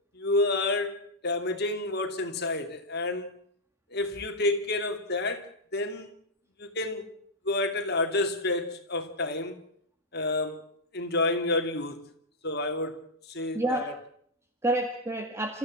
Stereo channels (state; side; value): normal; both; correlation -0.04